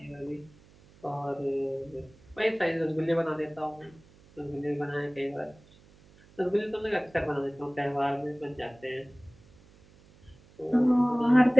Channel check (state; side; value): noise; right; hum, 26 dB below the sound